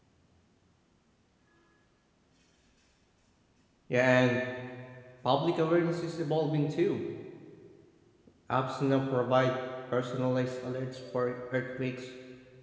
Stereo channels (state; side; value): identical; both; correlation 1.00